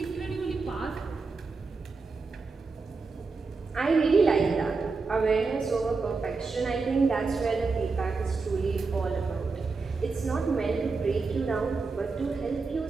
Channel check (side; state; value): left; quieter; 4.3 dB